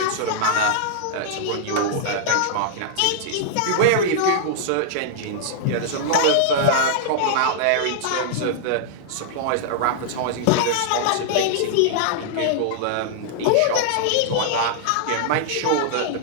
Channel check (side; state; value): both; different; correlation -0.01